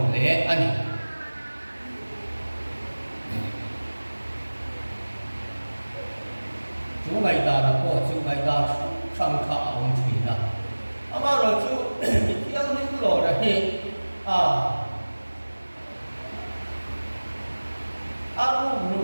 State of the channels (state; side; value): inverted; both; correlation -1.00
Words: le ani chu mai da na ko chu mai da sang kha ong thui na ama ro chu thiang nim lo ra hi aru ru